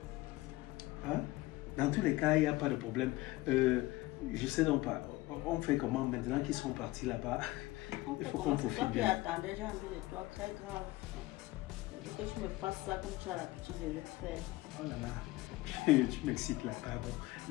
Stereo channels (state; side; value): quieter; right; 19.2 dB